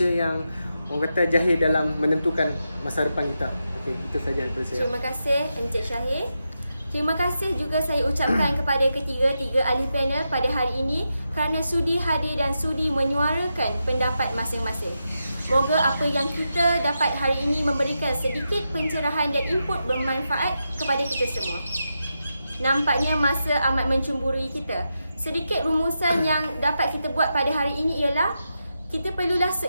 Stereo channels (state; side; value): inverted; both; correlation -0.87